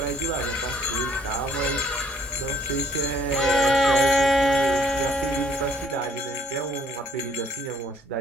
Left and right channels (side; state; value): both; normal; correlation 0.63